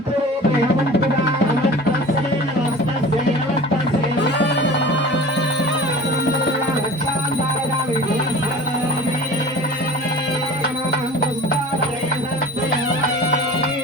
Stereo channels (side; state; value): both; normal; correlation 0.39